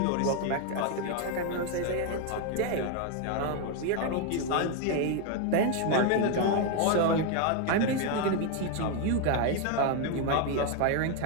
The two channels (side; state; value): both; different; correlation 0.01